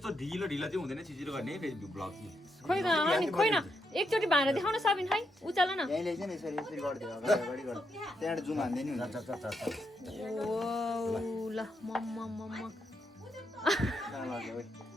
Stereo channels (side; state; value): both; normal; correlation 0.81